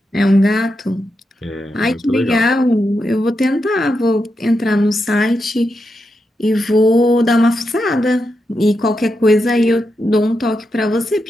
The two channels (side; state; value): both; normal; correlation 0.86